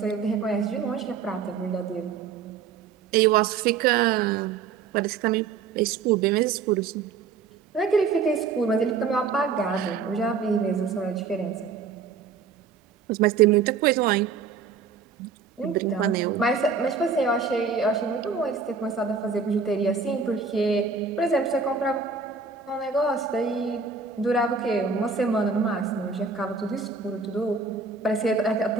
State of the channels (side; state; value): left; quieter; 5.4 dB